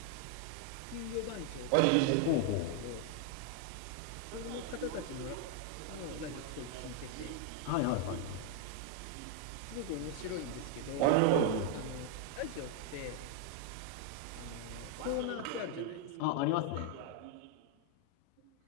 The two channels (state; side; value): different; both; correlation 0.00